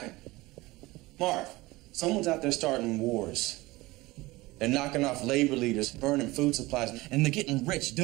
Marv, someone's out there starting wars. They're knocking off labor leaders, burning food supplies, and they're getting rich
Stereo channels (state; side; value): quieter; left; 20.6 dB